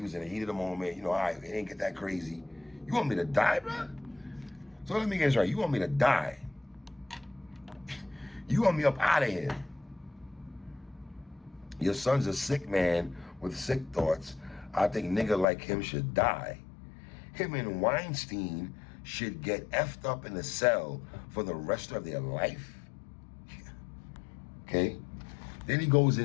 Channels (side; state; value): right; drops out; at 15.5 s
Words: was in the heat of the moment. You know, all right, it ain't get that crazy. You want me to die, bro? So let me get this right. You want me to die? You want me up out of here? Your son's a sick man with sick thoughts. I think nigga like him should die. Him and Weinstein should get effed up in the cell for the rest of their life. Okay? Then he goes